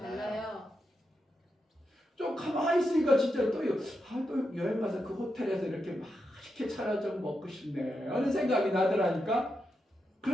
좀 가만히 있으니까 진짜 또 여행 가서 그 호텔에서 이렇게 맛있게 차려져 먹고 싶네 하는 생각이 나더라니까.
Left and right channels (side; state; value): both; normal; correlation 0.86